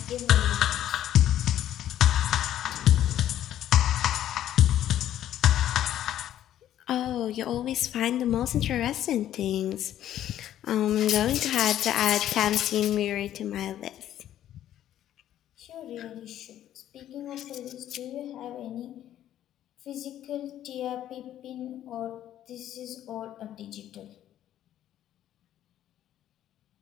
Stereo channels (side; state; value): right; quieter; 11.8 dB